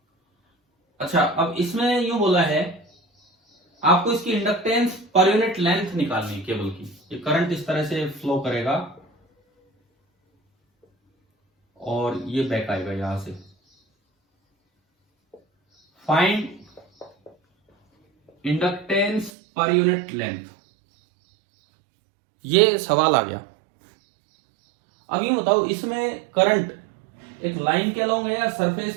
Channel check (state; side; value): drops out; left; at 19.3 s